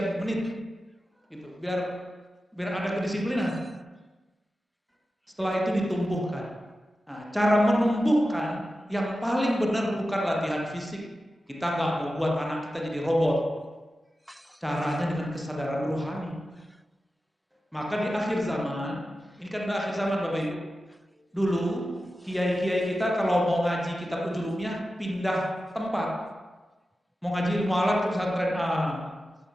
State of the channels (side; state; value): both; normal; correlation 0.93